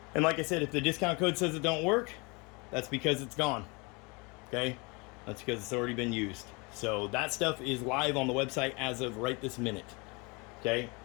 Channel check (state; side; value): quieter; right; 28.5 dB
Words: And like I said, if the discount code says it don't work, that's because it's gone. Okay, that's because it's already been used. So that stuff is live on the website as of right this minute. Okay,